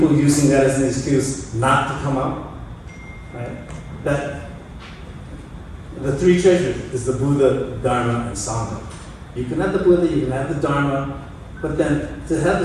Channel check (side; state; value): both; identical; correlation 1.00